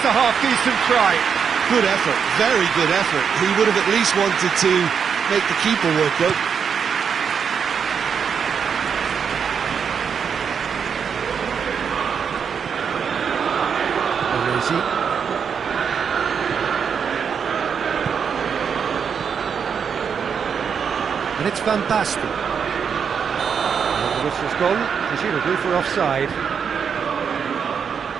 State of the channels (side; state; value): left; quieter; 6.8 dB